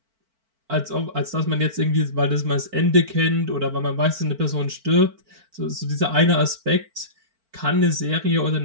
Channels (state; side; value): late; left; 4.5 ms